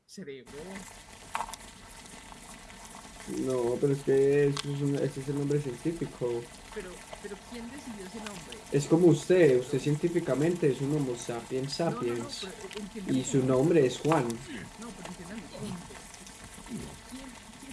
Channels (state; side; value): identical; both; correlation 1.00